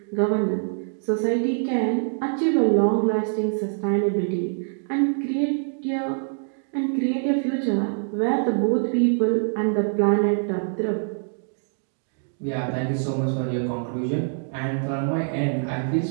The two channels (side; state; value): left; silent; digital silence